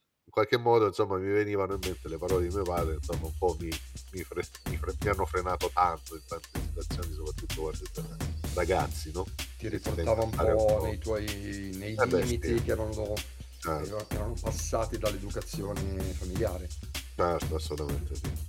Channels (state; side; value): identical; both; correlation 1.00